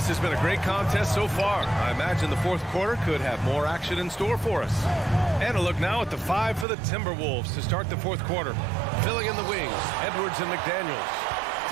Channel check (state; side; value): drops out; left; at 6.7 s